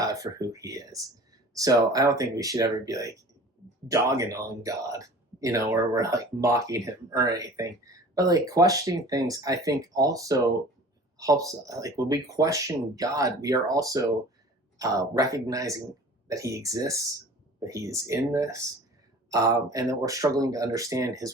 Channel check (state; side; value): normal; both; correlation 0.43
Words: for who He is. So I don't think we should ever be like dogging on God, or we're like mocking Him or anything. But like questioning things, I think also helps. Like when we question God, we are also recognizing that He exists, that He is in this, and that we're struggling to understand